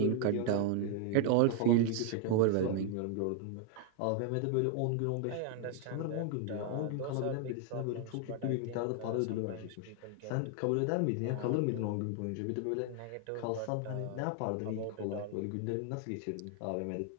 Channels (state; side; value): different; both; correlation 0.01